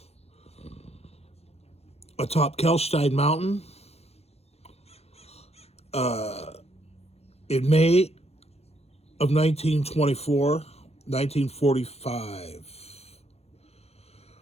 atop Kelstein Mountain, in May of 1924, 1945.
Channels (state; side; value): late; right; 0.30 ms